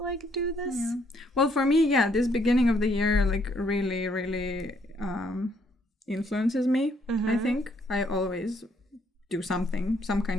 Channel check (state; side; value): normal; both; correlation 0.69